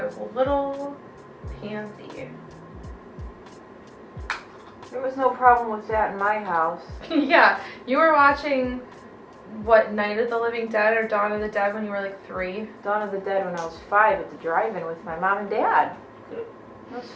was a little pansy. There was no problem with that in my house. Yeah, you were watching... What, Night of the Living Dead or Dawn of the Dead when you were like 3? Dawn of the Dead when I was 5 at the drive-in with my mom and dad. That was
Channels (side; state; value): both; identical; correlation 1.00